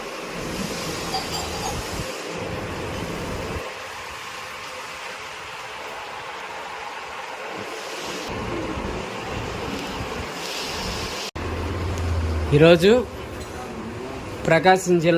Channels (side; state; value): both; identical; correlation 1.00